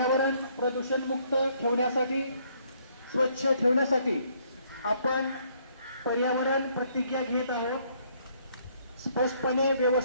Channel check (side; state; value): both; inverted; correlation -0.67